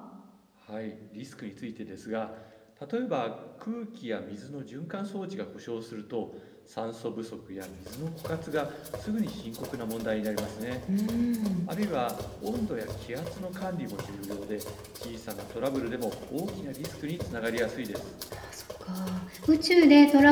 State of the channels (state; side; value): identical; both; correlation 1.00